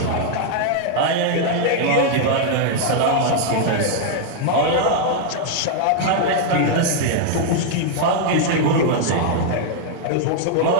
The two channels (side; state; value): both; different; correlation 0.00